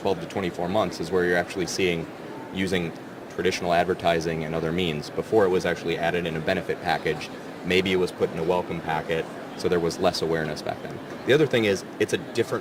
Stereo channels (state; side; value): identical; both; correlation 1.00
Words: to 24 months is where you're actually seeing using traditional advertising and other means. Before it was actually added in a benefit package. Maybe it was put in a welcome packet, so there was less awareness back then. The other thing is it's a